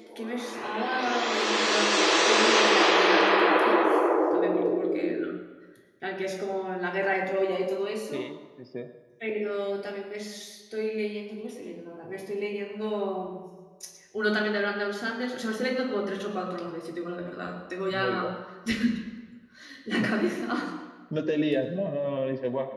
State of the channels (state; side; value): identical; both; correlation 1.00